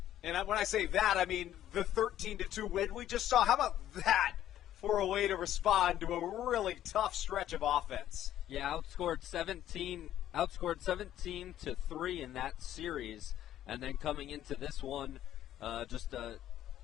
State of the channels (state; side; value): quieter; right; 12.1 dB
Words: And when I say that, I mean the 13-2 win we just saw. How about that for a way to respond to a really tough stretch of offense? Yeah, outscored 17 to 3 in that series, and then coming into this one,